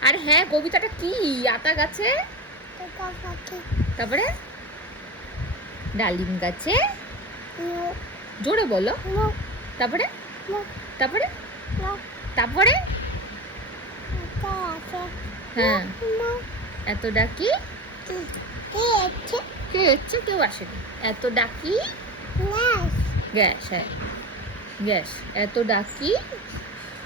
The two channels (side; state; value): both; normal; correlation 0.26